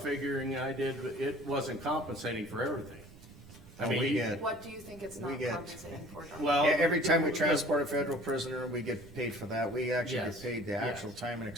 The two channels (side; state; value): right; noise; rumble, 20 dB below the sound